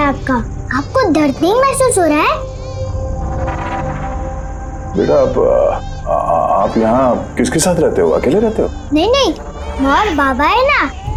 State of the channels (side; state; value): both; identical; correlation 1.00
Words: आपका, आपको दर्द नहीं महसूस हो रहा है? बेटा आप यहाँ किसके साथ रहते हो? अकेले रहते हो? नहीं नहीं, और बाबा है ना,